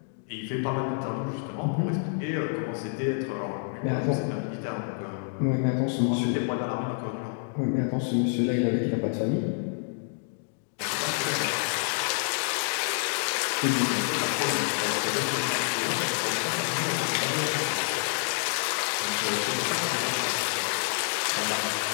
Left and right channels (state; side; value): silent; right; 59 dB below the other